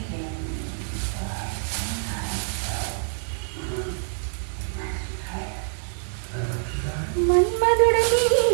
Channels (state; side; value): silent; left; digital silence